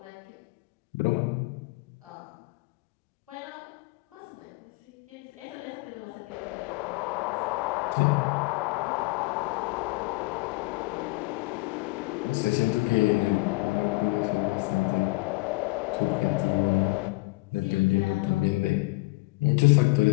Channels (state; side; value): quieter; right; 24.2 dB